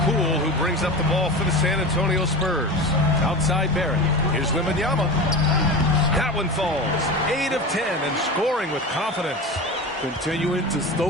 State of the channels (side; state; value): both; normal; correlation 0.28